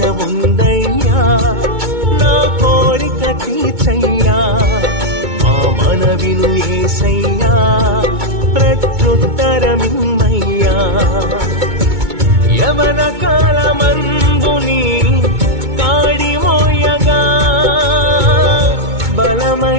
ఉందయ్యా నా కోరిక తీర్చయ్యా మా మనవిను యేసయ్యా ప్రత్యుత్తరమిమ్మయ్యా యవన కాలమందుని కాడిమోయగా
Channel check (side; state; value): left; late; 2.2 ms